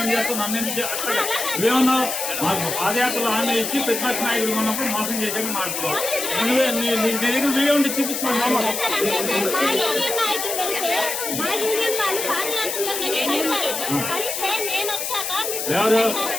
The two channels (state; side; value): noise; left; hiss, 3 dB below the sound